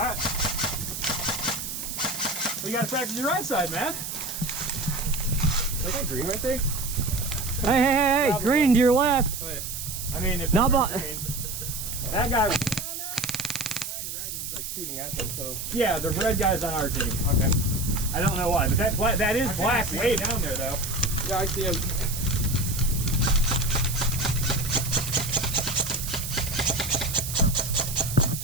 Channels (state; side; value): noise; right; hiss, 6 dB below the sound